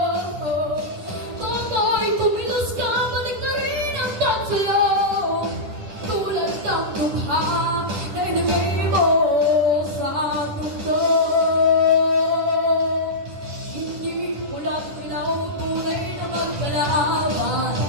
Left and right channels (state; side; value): late; left; 10 ms